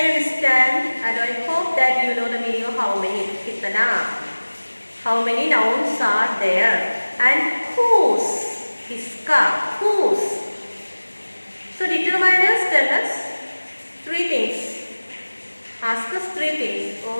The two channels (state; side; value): inverted; both; correlation -1.00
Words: understand and I hope that you know the meaning of how many. Kitana. How many nouns are there? And whose? Kiska. Whose? So determiners tell us 3 things. Ask us 3 things,